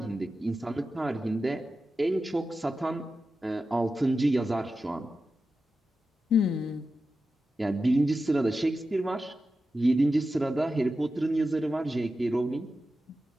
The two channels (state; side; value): normal; both; correlation 0.92